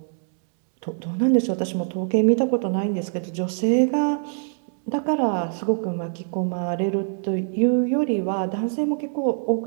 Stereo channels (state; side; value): silent; left; 63 dB below the other